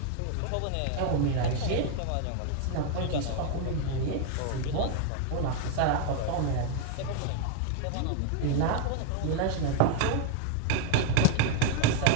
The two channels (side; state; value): both; different; correlation 0.01